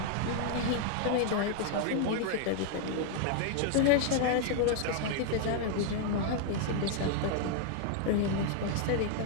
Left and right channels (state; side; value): different; both; correlation 0.00